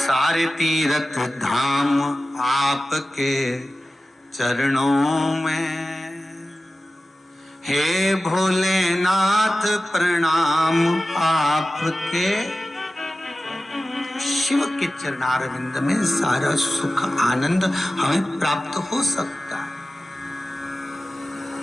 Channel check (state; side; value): normal; both; correlation 0.95